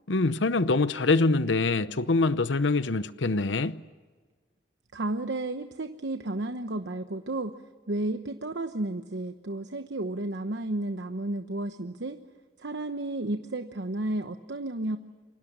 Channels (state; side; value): normal; both; correlation 0.39